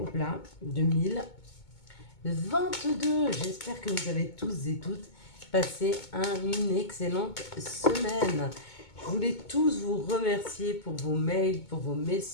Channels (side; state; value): right; late; 2.2 ms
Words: au plat 2022. J'espère que vous avez tous et toutes passé une excellente semaine. Je voulais tous vous remercier pour vos mails, pour vos